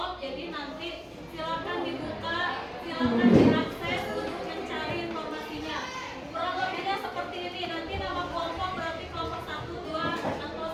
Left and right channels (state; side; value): identical; both; correlation 1.00